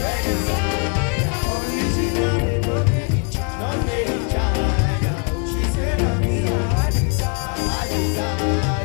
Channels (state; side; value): quieter; right; 38.9 dB